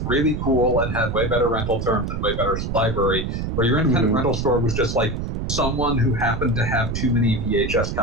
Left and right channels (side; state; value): right; noise; rumble, 3 dB below the sound